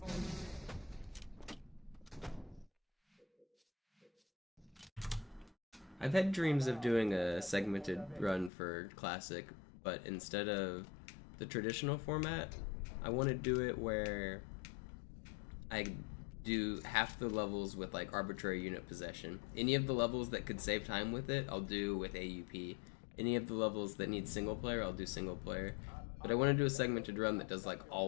uns. I've had dreams of doing a segmented run for Classic, but instead of the traditional format, I want to do it where I do half the levels with like arbitrary unit possession. Any of the levels that could save time with it, I'll do with AUP. Any of the levels that need single player, I'll do single player. But I want to do a segmented run that does like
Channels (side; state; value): right; drops out; at 8.5 s